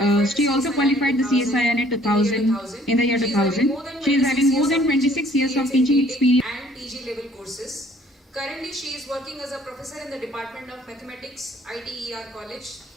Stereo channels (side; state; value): both; normal; correlation 0.58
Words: She also qualified the CSIR NET 2000 in the year 2000. She is having more than 26 years of teaching experience and PG level courses. Currently, she is working as a professor in the Department of Mathematics, ITER College,